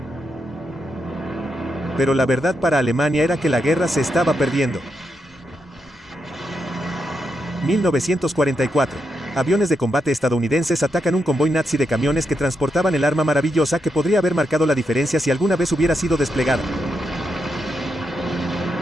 Pero la verdad para Alemania era que la guerra se estaba perdiendo. 1944. Aviones de combate estadounidenses atacan un convoy nazi de camiones que transportaban el arma maravillosa que podría haber marcado la diferencia si alguna vez hubiera sido desplegada.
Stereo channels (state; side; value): normal; both; correlation 0.83